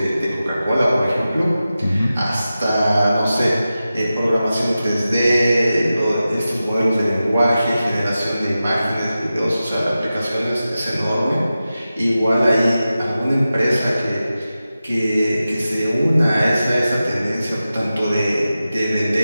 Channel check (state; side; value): inverted; both; correlation -0.93